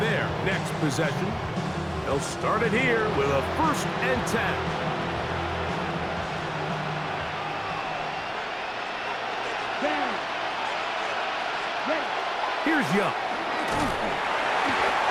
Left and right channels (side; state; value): both; identical; correlation 1.00